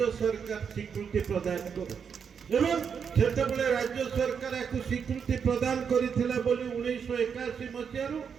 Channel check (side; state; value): left; quieter; 6.8 dB